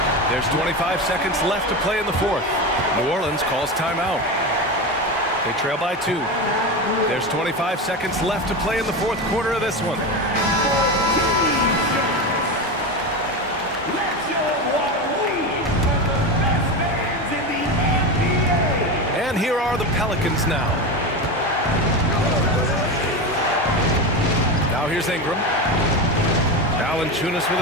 There's 25 seconds left to play in the fourth. New Orleans calls timeout. They trail by 2. There's 25 seconds left to play in the fourth quarter of this one. And here are the Pelicans now. Now here's Ingram. Valanciunas with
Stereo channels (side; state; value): both; normal; correlation 0.20